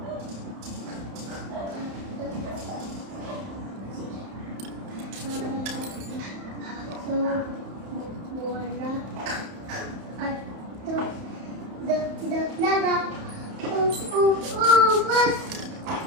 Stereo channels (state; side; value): late; left; 31 ms